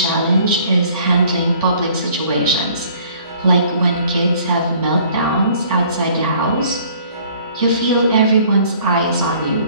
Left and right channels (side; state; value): both; inverted; correlation -0.56